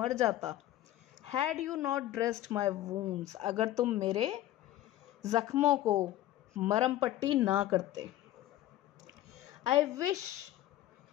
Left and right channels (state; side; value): quieter; right; 14.0 dB